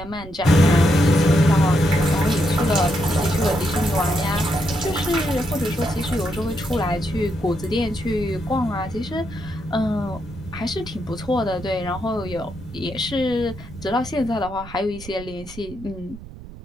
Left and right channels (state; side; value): noise; right; rumble, 15 dB below the sound